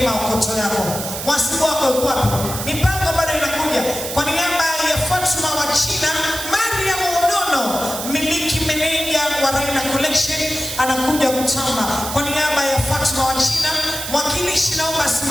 maokoto yako. Mwasibu wako yuko wapi? Mipango bado inakuja. Kwa niaba ya Fatuma wa China, Mariam Unono, miliki meneja wa Raina Collection, anakuja kutamba. Kwa niaba ya Fatuma wa China, mwakilishi naomba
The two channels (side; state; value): right; noise; hiss, 6 dB below the sound